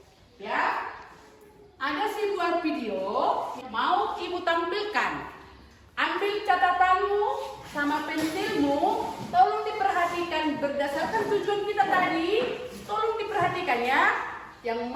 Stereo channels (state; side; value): identical; both; correlation 1.00